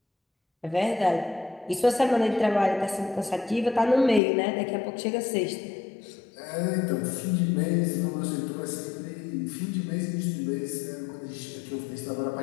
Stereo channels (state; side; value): drops out; right; at 4.2 s